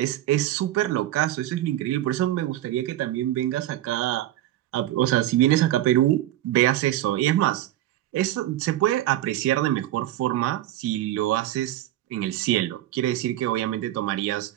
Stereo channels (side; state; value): left; quieter; 13.8 dB